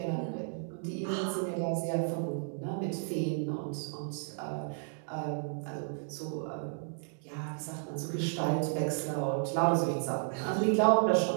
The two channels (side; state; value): left; silent; digital silence